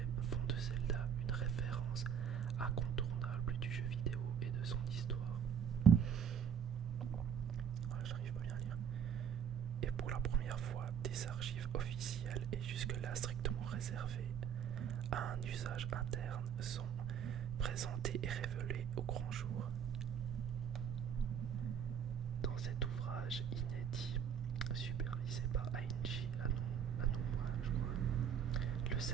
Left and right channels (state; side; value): quieter; left; 8.2 dB